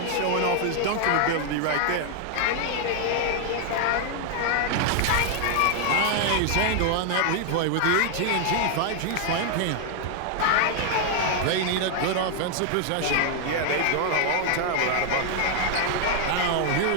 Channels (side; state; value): both; different; correlation 0.00